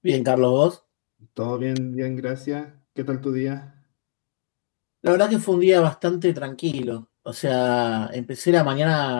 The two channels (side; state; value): right; silent; digital silence